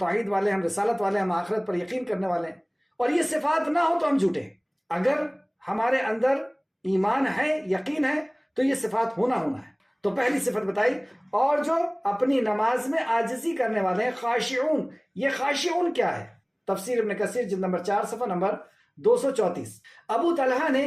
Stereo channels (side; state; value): both; identical; correlation 1.00